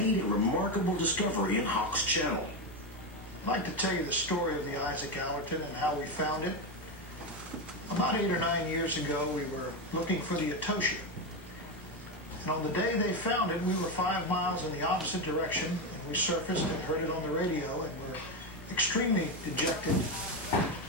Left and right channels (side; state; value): both; normal; correlation 0.11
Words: a remarkable discovery in Hawks Channel. I'd like to tell you the story of the Isaac Allerton and how we found it. About 8 or 9 years ago, we were looking for the Etosia. And on the day they found it, we were 5 miles in the opposite direction, and we surfaced and heard it on the radio, and were extremely dejected.